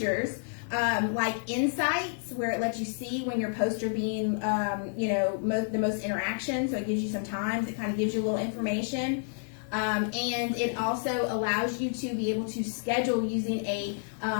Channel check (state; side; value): silent; right; 58 dB below the other